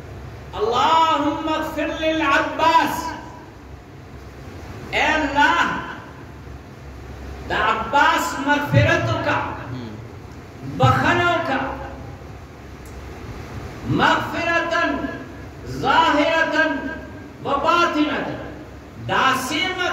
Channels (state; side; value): identical; both; correlation 1.00